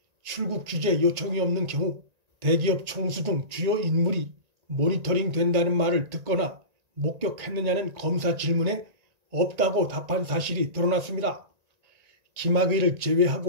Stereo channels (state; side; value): late; left; 1.9 ms